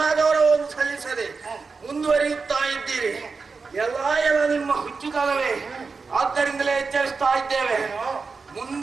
ಗೌರವವನ್ನು ಸಲ್ಲಿಸದೆ ಮುಂದುವರಿಯುತ್ತಾ ಇದ್ದೀರಿ. ಎಲ್ಲ ನಿಮ್ಮ ಹುಚ್ಚುತನವೇ. ಆದ್ದರಿಂದಲೇ ಎಚ್ಚರಿಸ್ತಾ ಇದ್ದೇವೆ.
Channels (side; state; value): left; quieter; 4.6 dB